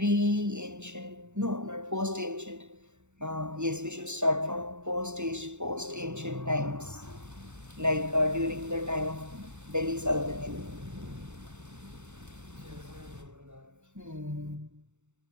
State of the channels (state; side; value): late; left; 0.84 ms